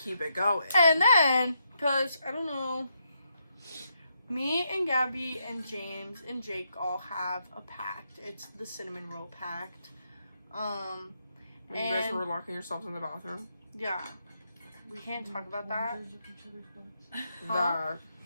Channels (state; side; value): inverted; both; correlation -0.79